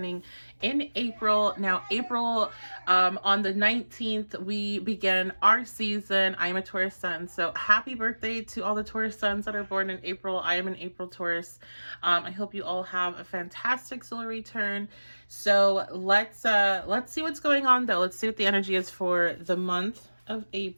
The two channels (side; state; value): both; inverted; correlation -1.00